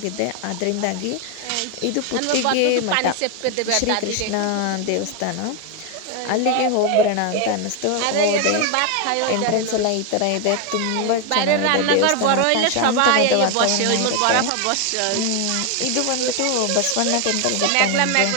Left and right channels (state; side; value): different; both; correlation 0.01